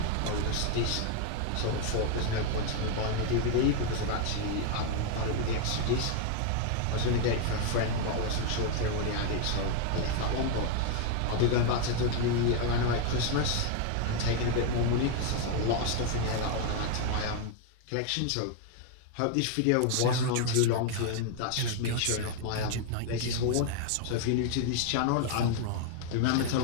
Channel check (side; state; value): both; different; correlation 0.00